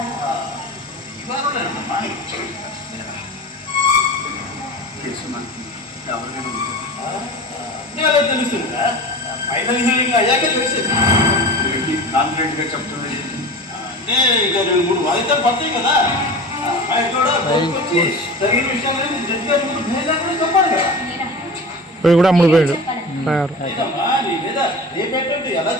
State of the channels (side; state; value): both; normal; correlation 0.33